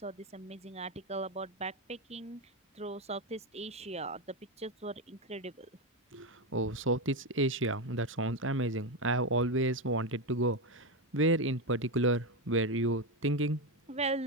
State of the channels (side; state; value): both; normal; correlation 0.10